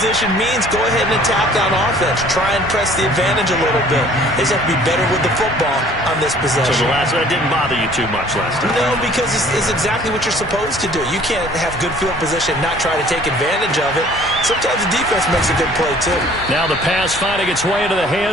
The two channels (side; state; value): both; normal; correlation 0.53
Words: means go ahead and attack on offense. Try and press the advantage a little bit. They just have to be better with the football on this possession. So that didn't bother you too much last time? No, because it's exactly what you're supposed to do. You can't have good field position and not try to take advantage of it. Sometimes the defense makes a good play, too. Now the pass finding its way into the